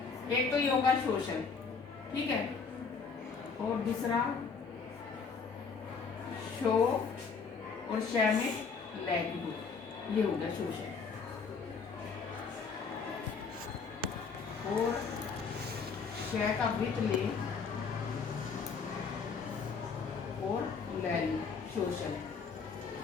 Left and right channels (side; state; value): right; quieter; 5.3 dB